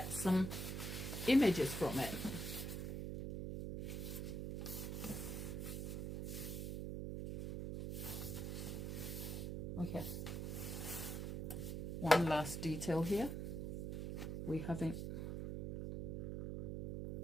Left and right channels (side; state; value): right; noise; hum, 3 dB below the sound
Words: some images from it. Okay, one last detail here. We haven't